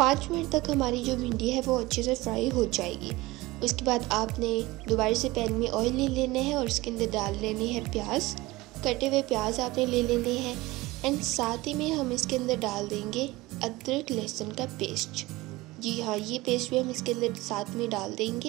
मिनट तक हमारी जो भिंडी है वो अच्छे से फ्राई हो जाएगी। उसके बाद आपने दोबारा से पैन में ऑयल ले लेना है और उसके अंदर डाल लेनी है प्याज। कटे हुए प्याज आपने ले लेने हैं एंड साथ ही में हम इसके अंदर डाल देंगे अदरक लहसुन का पेस्ट। जी हाँ, ये पेस्ट भी हम इसके अंदर साथ में डाल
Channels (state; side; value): quieter; left; 20.2 dB